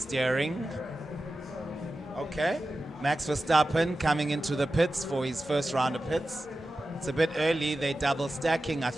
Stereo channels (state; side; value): normal; both; correlation 0.93